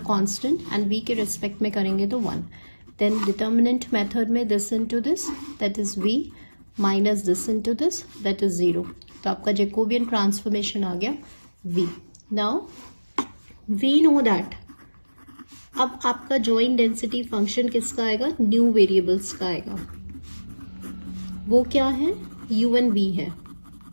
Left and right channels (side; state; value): both; inverted; correlation -1.00